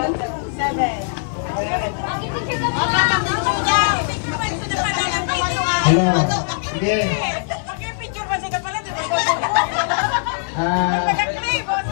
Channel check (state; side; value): silent; right; 55 dB below the other